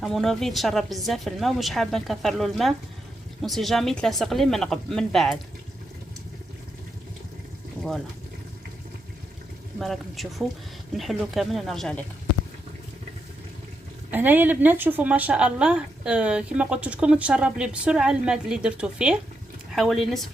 امونوفي تشرب بزاف الماء ومش حابه نكثر له الماء، وسي جامي تلاصق لي من بعد. فوالا كما راكم تشوفوا نحلو كامل ونرجع لكم. هنايا البنات شوفوا ما شاء الله، كما قلت لكم تشرب لي بسرعه الماء اللي درتو فيه، حوالي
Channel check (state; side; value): normal; both; correlation 0.83